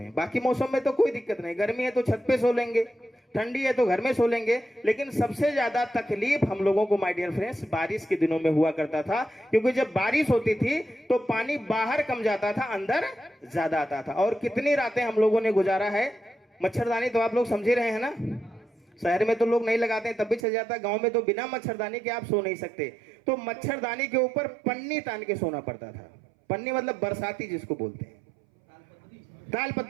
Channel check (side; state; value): left; drops out; at 20.4 s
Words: बाकी मौसम में तो कोई दिक्कत नहीं, गर्मी है तो छत पे सो लेंगे, ठंडी है तो घर में सो लेंगे, लेकिन सबसे ज्यादा तकलीफ हम लोगों को माय डियर फ्रेंड्स बारिश के दिनों में हुआ करता था। क्योंकि जब बारिश होती थी तो पानी बाहर कम जाता था, अंदर ज्यादा आता था। और कितनी रातें हम लोगों ने गुजारा है। मच्छरदानी तो आप लोग समझ रहे हैं ना, शहर में तो लोग नहीं लगाते हैं तब भी चल जाता है, गांव में तो बिना मच्छरदानी के आप सो नहीं सकते। तो मच्छरदानी के ऊपर पन्नी तान के सोना पड़ता था। पन्नी मतलब बरसाती जिसको बोलते हैं,